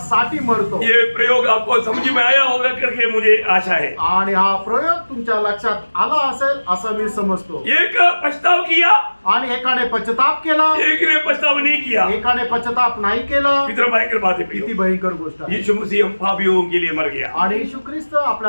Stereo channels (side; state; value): both; inverted; correlation -1.00